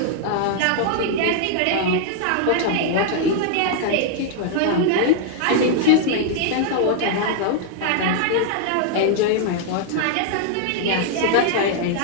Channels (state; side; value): different; both; correlation 0.00